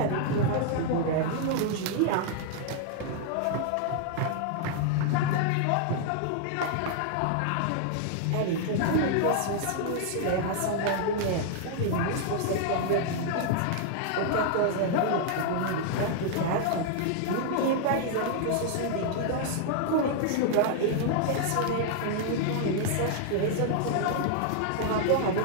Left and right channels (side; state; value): both; different; correlation 0.00